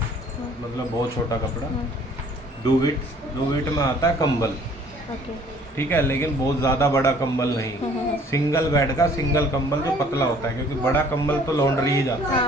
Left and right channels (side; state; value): both; normal; correlation 0.56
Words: मतलब बहुत छोटा कपड़ा। डूविट में आता है कंबल। ओके। ठीक है, लेकिन बहुत ज़्यादा बड़ा कंबल नहीं, सिंगल बेड का सिंगल कंबल जो पतला होता है, क्योंकि बड़ा कंबल तो लॉन्ड्री ही जाता है। हाँ,